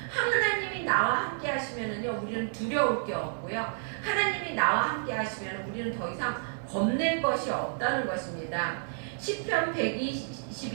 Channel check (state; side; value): silent; left; digital silence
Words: 하나님이 나와 함께 하시면은요, 우리는 두려울 게 없고요. 하나님이 나와 함께 하시면 우리는 더 이상 겁낼 것이 없다는 것입니다. 시편